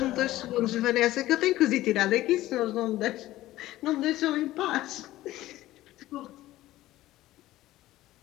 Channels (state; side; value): quieter; right; 15.8 dB